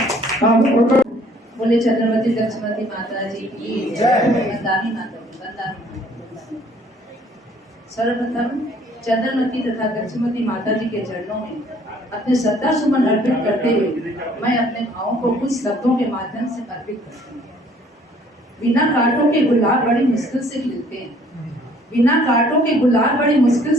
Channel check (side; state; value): both; normal; correlation 0.59